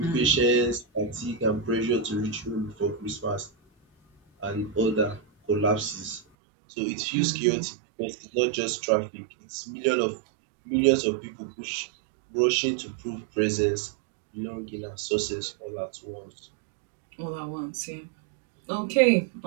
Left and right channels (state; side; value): drops out; left; at 6.2 s